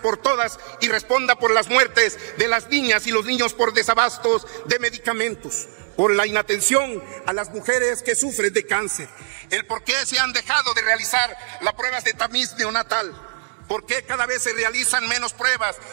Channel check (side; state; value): left; silent; digital silence